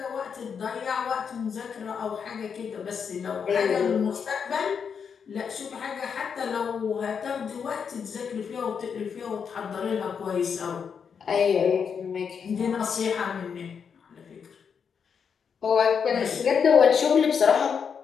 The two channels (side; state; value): right; quieter; 6.7 dB